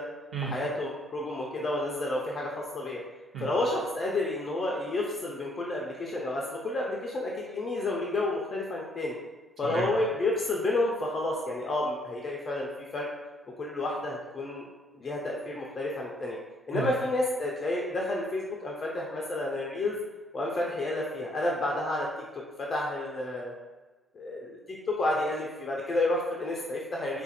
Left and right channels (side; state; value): both; normal; correlation 0.68